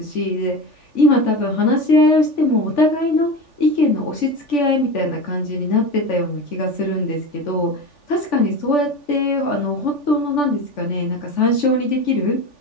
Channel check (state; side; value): late; right; 3.4 ms